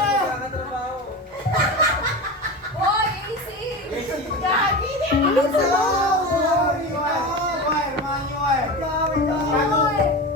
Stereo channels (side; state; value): both; normal; correlation 0.26